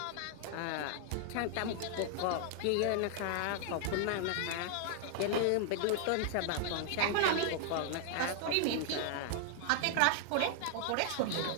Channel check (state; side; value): different; both; correlation 0.00